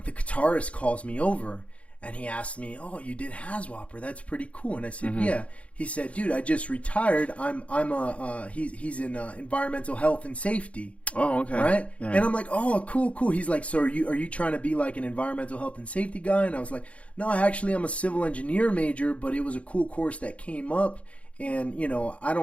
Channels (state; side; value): late; right; 0.063 ms